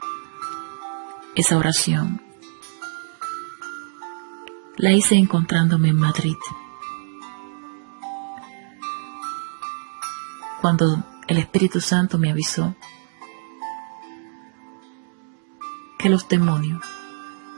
Esa oración la hice encontrándome en Madrid, cuando el Espíritu Santo me avisó que los demonios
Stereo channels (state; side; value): silent; left; 62 dB below the other